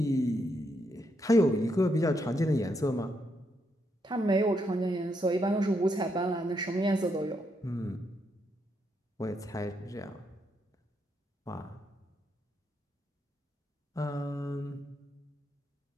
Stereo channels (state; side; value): normal; both; correlation 0.79